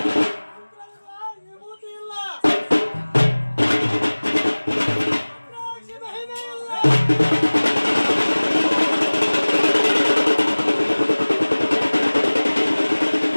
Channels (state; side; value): inverted; both; correlation -1.00